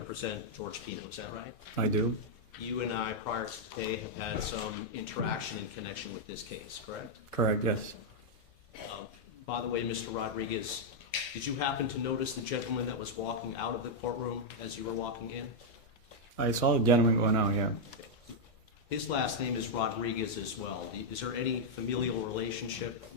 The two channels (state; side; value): late; right; 2.1 ms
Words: George Pino. Is that right? I do. You and I, prior to today, have had some interaction in connection with this case, correct? Correct, yes. By the way, Mr. Rodriguez, did you happen to notice the gentleman that was walking out of the courtroom as you were walking in? I saw a gentleman going out, yeah. His last name is Rodriguez as well. Is there any familial relationship